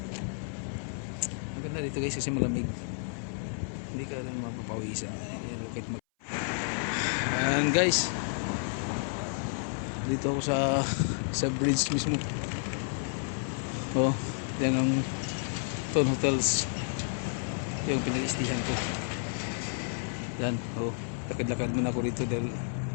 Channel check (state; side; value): silent; right; 57 dB below the other